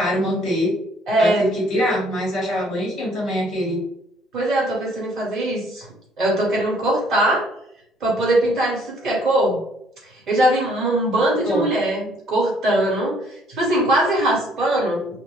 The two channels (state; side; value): normal; both; correlation 0.62